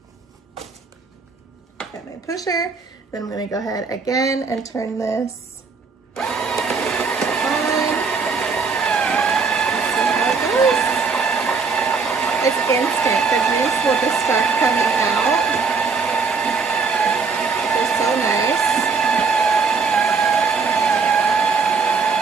Got my pusher. Then I'm gonna go ahead again and turn this on. See how it goes. It's instant. The juice will just start coming out. It's so nice.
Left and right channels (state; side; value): quieter; left; 4.9 dB